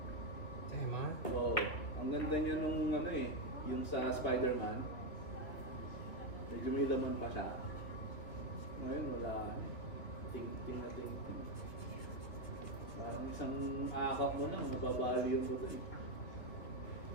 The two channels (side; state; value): right; late; 2.8 ms